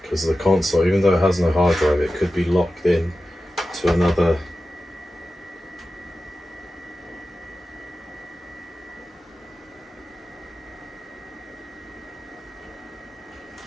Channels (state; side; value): normal; both; correlation 0.93